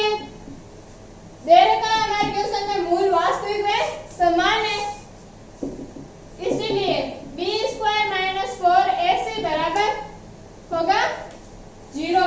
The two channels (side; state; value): both; identical; correlation 1.00